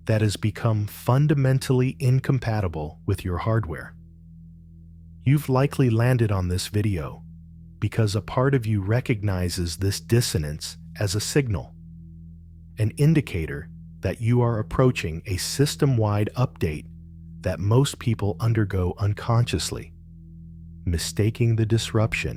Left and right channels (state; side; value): identical; both; correlation 1.00